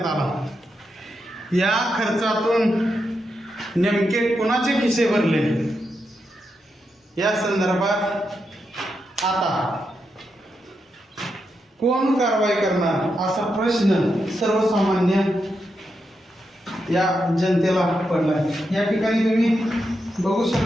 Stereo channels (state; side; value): normal; both; correlation 0.85